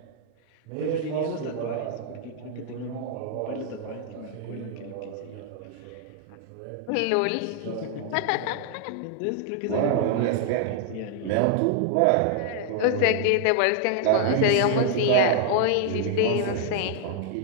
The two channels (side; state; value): both; different; correlation 0.00